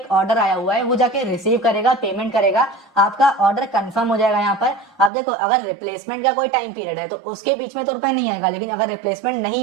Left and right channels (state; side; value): drops out; left; at 5.1 s